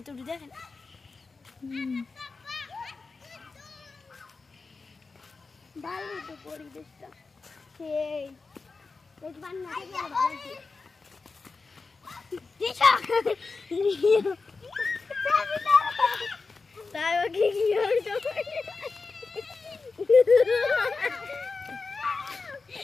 দেখেন ভালো তো পরিবেশটা সেই এই বান্না থেকে ভালো দিশা তাই ও কি হইতো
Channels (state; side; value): quieter; right; 4.2 dB